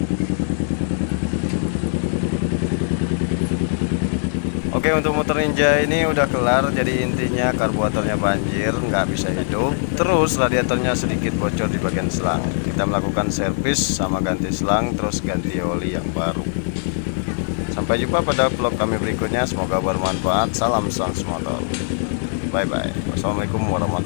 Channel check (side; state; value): right; silent; 65 dB below the other